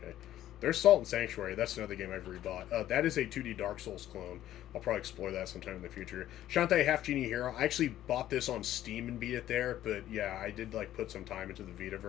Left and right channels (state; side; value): quieter; right; 12.9 dB